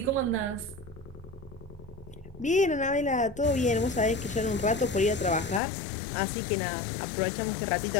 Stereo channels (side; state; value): right; drops out; at 5.6 s